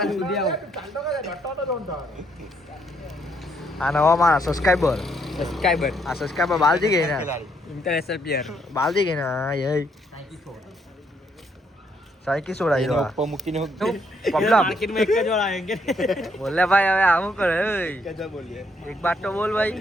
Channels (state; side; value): normal; both; correlation 0.72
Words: આ નવા મારા સબસ્ક્રાઇબર સબસ્ક્રાઇબર આ સબસ્ક્રાઇબર બાલજી ગઈ ને ઇન્ટરનેશનલ પ્લેયર બાલજી ગઈ ને હા યે સાઈકી છોડાઈ દો ઉપર મૂકીને પબલા માર્કેટમાં એક જ વાર આવેંગે બોલે ભાઈ હવે આવું કરે ઓય कैसा बोलिए એક બાત તો બોલ